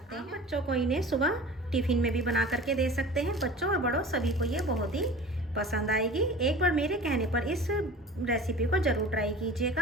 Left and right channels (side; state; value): both; normal; correlation 0.39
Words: हैं। बच्चों को इन्हें सुबह टिफिन में भी बना करके दे सकते हैं। बच्चों और बड़ों सभी को ये बहुत ही पसंद आएगी। एक बार मेरे कहने पर इस रेसिपी को ज़रूर ट्राई